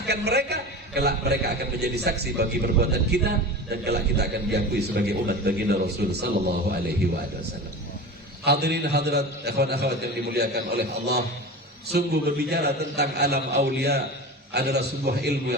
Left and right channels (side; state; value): both; normal; correlation 0.31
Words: mereka, kelak mereka akan menjadi saksi bagi perbuatan kita, dan kelak kita akan diakui sebagai umat baginda Rasul sallallahu alaihi wasallam. Hadirin hadirat, ikhwan akhwat yang dimuliakan oleh Allah, sungguh berbicara tentang alam aulia adalah sebuah ilmu